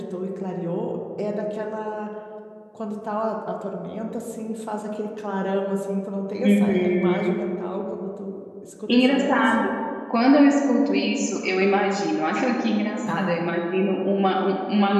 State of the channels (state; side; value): identical; both; correlation 1.00